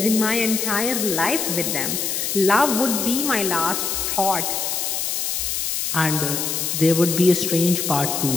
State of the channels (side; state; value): left; noise; hiss, 1 dB below the sound